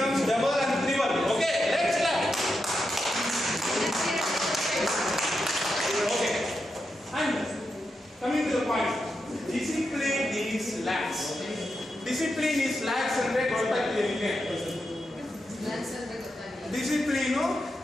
double and triple. Okay let's clap. Okay and coming to the point, discipline is lax. Discipline is lax ಅಂದ್ರೆ ಗೊತ್ತಾಗ್ತಿದೆ ನಿಮಗೆ? ಡಿಸಿಪ್ಲೀನು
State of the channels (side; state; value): both; normal; correlation 0.86